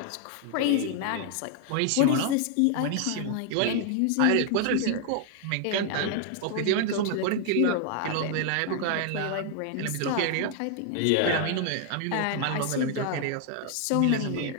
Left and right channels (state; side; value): different; both; correlation 0.00